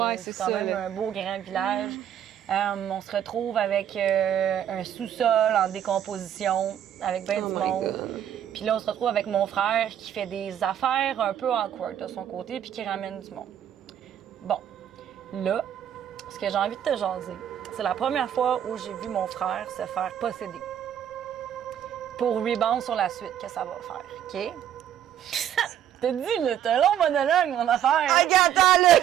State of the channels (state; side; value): quieter; left; 10.1 dB